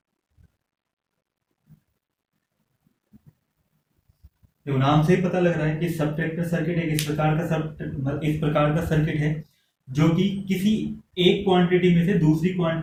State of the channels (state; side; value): identical; both; correlation 1.00